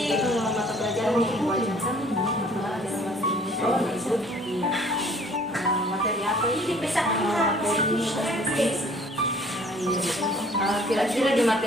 mata pelajaran yang diwajarkan pelajaran bahasa Indonesia ya Ibu. Iya. Materi apa ini? Kira-kira di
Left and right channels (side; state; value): both; normal; correlation 0.55